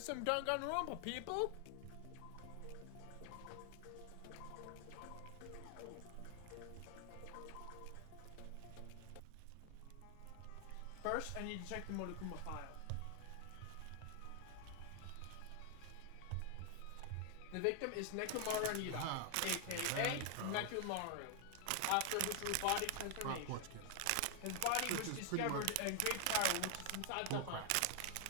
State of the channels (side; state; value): both; different; correlation 0.00